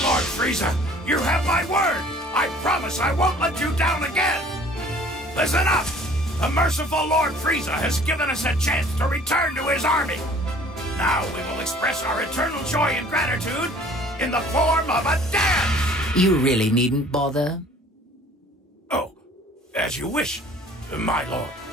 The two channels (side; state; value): both; normal; correlation 0.52